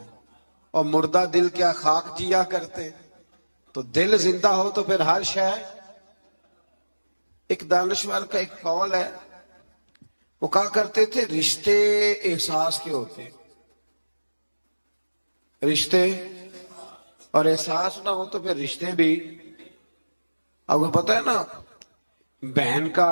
اور مردہ دل کیا خاک جیا کرتے، تو دل زندہ ہو تو پھر ہر شے۔ ایک دانشور کا ایک قول ہے، وہ کہا کرتے تھے رشتے احساس کے ہوتے، رشتے اور احساس نہ ہو تو پھر رشتے بھی۔ اب کو پتہ ہے نا، بہن کا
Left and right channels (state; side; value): inverted; both; correlation -1.00